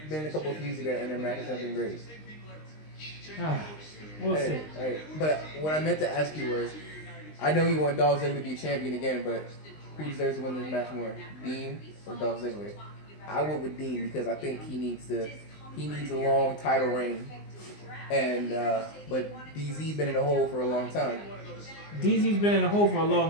been a couple of feuds together, and their matches have been great. We'll see. Hey, but what I meant to ask you was, I know you want Dolph Ziggler to be champion again, but who deserves to win this match more, Dean or Dolph Ziggler? I went with Dean because I think he needs a long title reign, and but DZ been in the hole for a long time. DZ's been in the hole for a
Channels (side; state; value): right; late; 19 ms